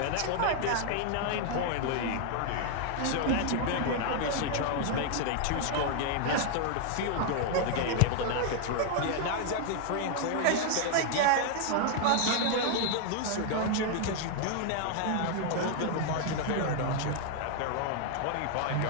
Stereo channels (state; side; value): different; both; correlation 0.00